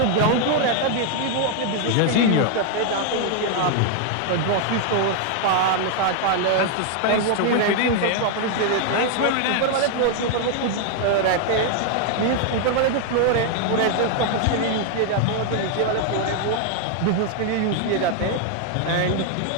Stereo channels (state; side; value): different; both; correlation 0.00